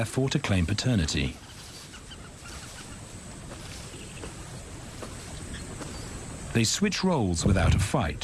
to claim paternity. They switch roles without a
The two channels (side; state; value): both; identical; correlation 1.00